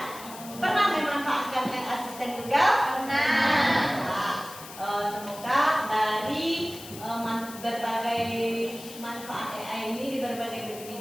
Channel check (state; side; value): noise; left; hiss, 15 dB below the sound